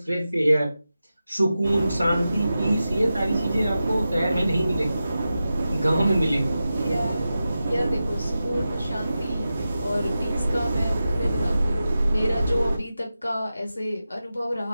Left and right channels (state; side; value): inverted; both; correlation -0.92